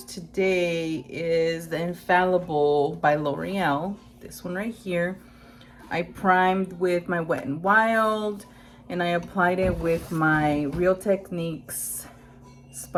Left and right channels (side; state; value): both; identical; correlation 1.00